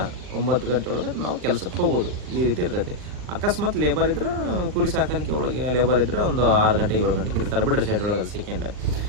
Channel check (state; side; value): late; left; 39 ms